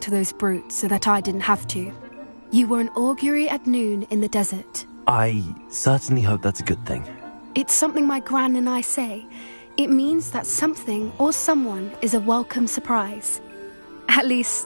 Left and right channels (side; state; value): both; inverted; correlation -1.00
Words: to those brutes so that I didn't have to. You were an augury at noon in the desert. I certainly hope that's a good thing. It's something my gran and I say. It means that something or someone is a welcome surprise. At